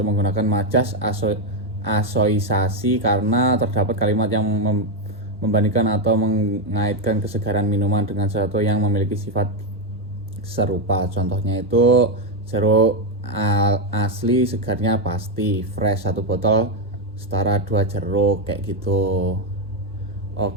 menggunakan majas asoisasi karena terdapat kalimat yang membandingkan atau mengaitkan kesegaran minuman dengan sesuatu yang memiliki sifat serupa. Contohnya itu jeruk asli segarnya pasti, fresh 1 botol setara 2 jeruk, kayak gitu.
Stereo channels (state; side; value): normal; both; correlation 0.06